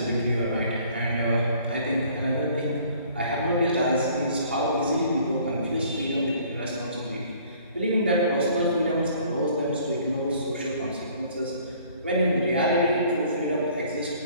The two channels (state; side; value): inverted; both; correlation -0.56